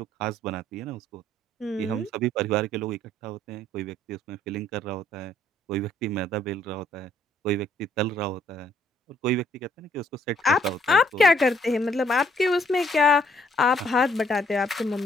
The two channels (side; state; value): both; normal; correlation 0.66